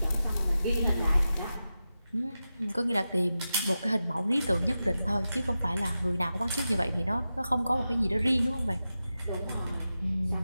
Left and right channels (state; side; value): inverted; both; correlation -0.92